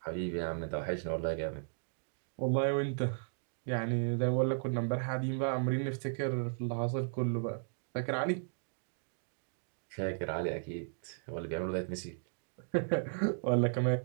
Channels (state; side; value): silent; left; digital silence